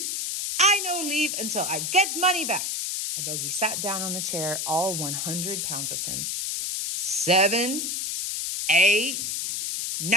I no leave until I get money back. A bogey sat down on the chair, all 100 pounds of him. 7. 8.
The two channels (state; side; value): noise; left; hiss, 2 dB below the sound